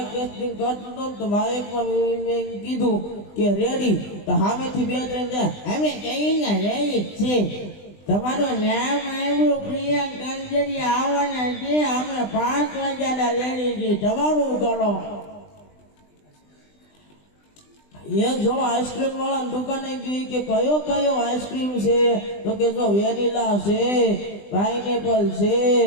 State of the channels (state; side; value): late; right; 20 ms